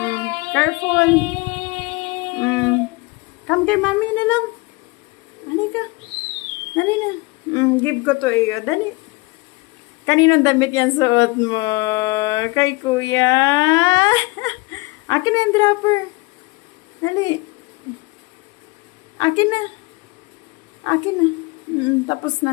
Careful. Come kay mami na lang. Dali ka. Dali na. Give ko to iyo. Dali. Kaninong damit yan suot mo? Kay Kuya. Akin na yung dropper. Dali. Akin na. Akin na. Tapos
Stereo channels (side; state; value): right; quieter; 24.7 dB